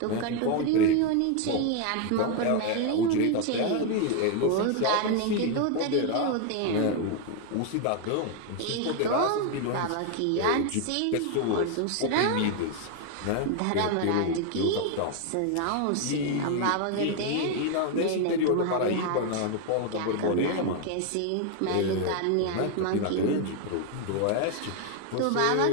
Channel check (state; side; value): different; both; correlation 0.01